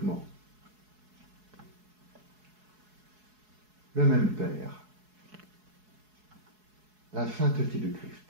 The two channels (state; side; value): late; left; 4.7 ms